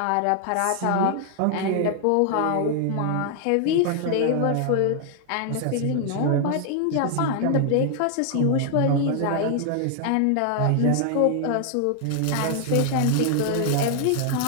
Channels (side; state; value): both; different; correlation 0.00